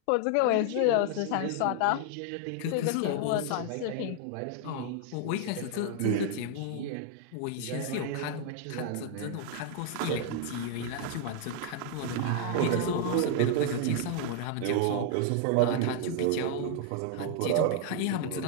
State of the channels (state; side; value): different; both; correlation 0.00